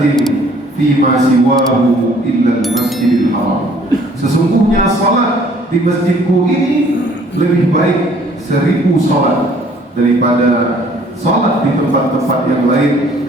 fima siwahu illa al-masjidil haram. Sesungguhnya salat di masjidku ini lebih baik 1000 salat daripada salat di tempat-tempat yang lain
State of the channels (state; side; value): normal; both; correlation 0.58